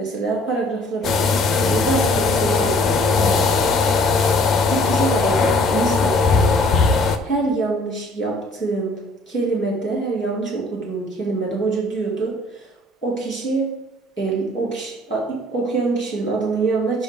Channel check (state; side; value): normal; both; correlation 0.56